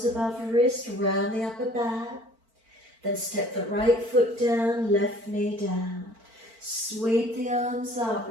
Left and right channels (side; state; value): left; late; 4.4 ms